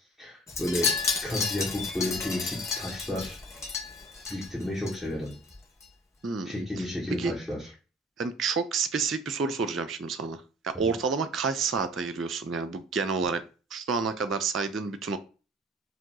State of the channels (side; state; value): both; normal; correlation 0.48